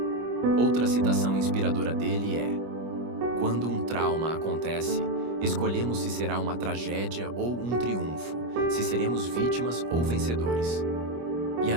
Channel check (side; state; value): left; late; 25 ms